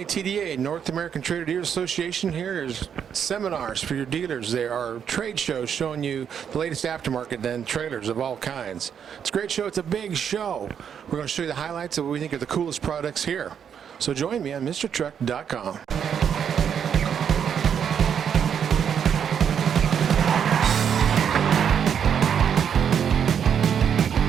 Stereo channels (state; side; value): quieter; left; 8.0 dB